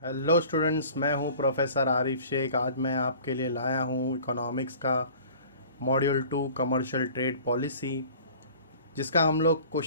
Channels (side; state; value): both; inverted; correlation -0.46